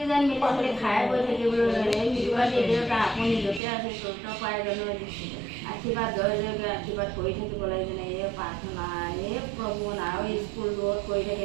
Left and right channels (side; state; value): left; drops out; at 3.6 s